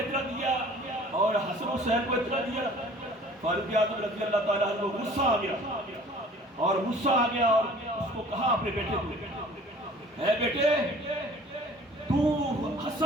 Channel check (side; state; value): both; normal; correlation 0.50